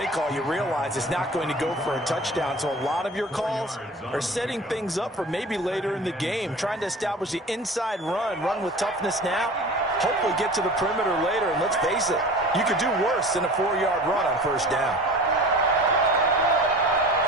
call, you realize it's not going to go for a touchdown. So a lot of your calls are setting things up for maybe later in the game, trying to establish the inside run with toughness now, hopefully get to the perimeter later. And let's face it, you could do worse than a 4-yard run on 1st down.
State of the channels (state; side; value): normal; both; correlation 0.39